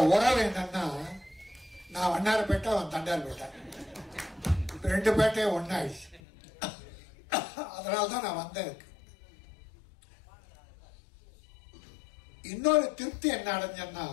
உறவு என்னன்னா, நான் வண்ணாரப்பேட்டை, அவன் தண்டையார்பேட்டை, 2 பேட்டையும் ஒன்னாயிடுச்சு. அதனால்தான் நான் வந்தேன். இன்னொரு திருப்தி என்ன அடைஞ்சேன்னா,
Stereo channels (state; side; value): drops out; right; at 6.2 s